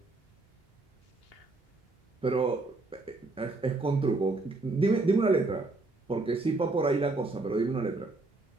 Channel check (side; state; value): left; quieter; 3.3 dB